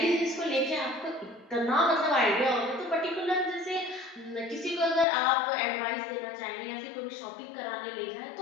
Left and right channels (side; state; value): right; drops out; at 5.1 s